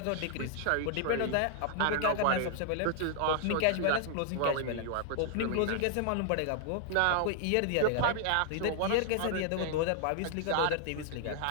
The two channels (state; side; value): different; both; correlation 0.00